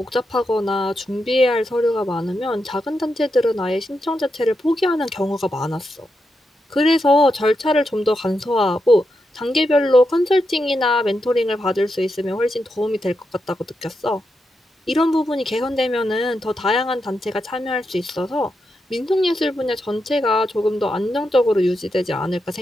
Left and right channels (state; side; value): normal; both; correlation 0.85